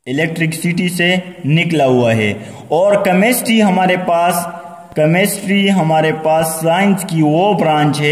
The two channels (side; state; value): both; identical; correlation 1.00